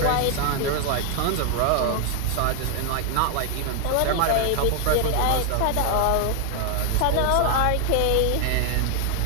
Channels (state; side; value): different; both; correlation 0.00